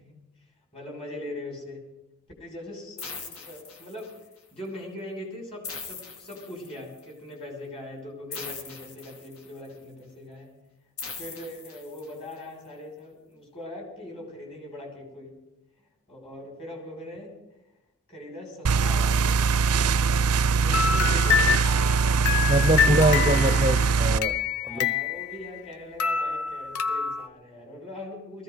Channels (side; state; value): both; normal; correlation 0.54